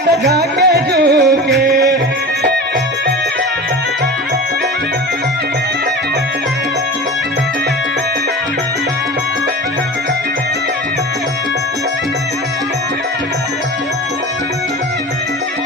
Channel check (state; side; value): normal; both; correlation 0.32